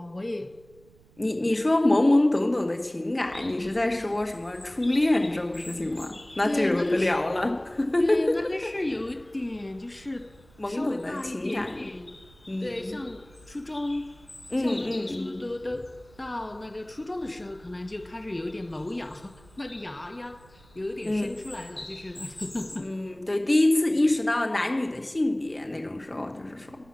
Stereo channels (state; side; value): noise; right; rumble, 27 dB below the sound